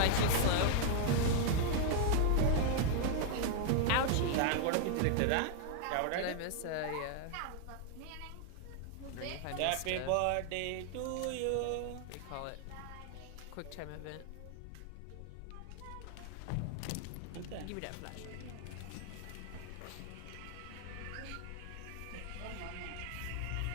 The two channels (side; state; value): both; different; correlation 0.00